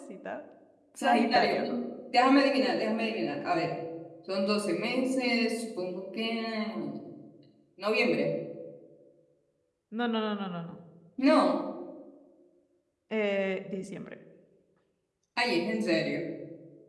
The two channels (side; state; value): both; identical; correlation 1.00